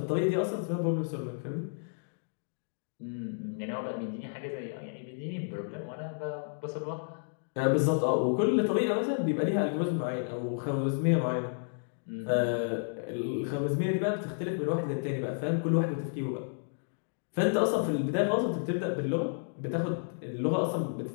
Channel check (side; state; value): right; silent; digital silence